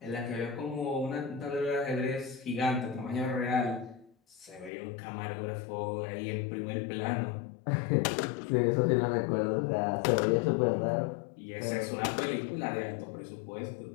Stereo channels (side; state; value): right; drops out; at 4.7 s